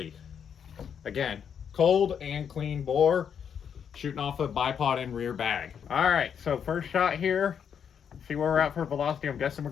Again, cold and clean bore, shooting off a bipod and rear bag. All right, so first shot here. See where we're at for velocity. I'm guessing we're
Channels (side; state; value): right; quieter; 7.7 dB